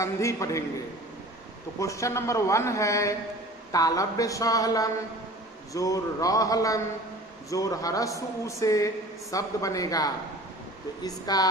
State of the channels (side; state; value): both; normal; correlation 0.43